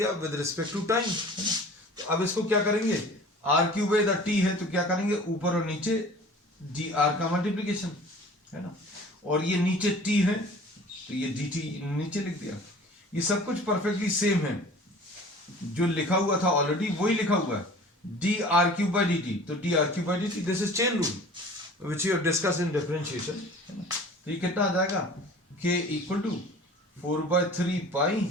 विद रिस्पेक्ट टू टाइम, है ना। तो अब इसको क्या करेंगे? r क्यूब है, इधर t है, तो क्या करेंगे? ऊपर और नीचे dr का मल्टीप्लीकेशन, है ना। और ये नीचे t है, तो ये dt नीचे लिख दिया। ये सब कुछ परफेक्टली सेम है, जो लिखा हुआ था ऑलरेडी वही लिखा हुआ है, D R cube by D T. तो D R cube by D T, this is chain rule which you have discuss in differentiation, है ना। तो ये कितना आ जाएगा, के इक्वल टू 4/3 पाई,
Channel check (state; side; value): normal; both; correlation 0.44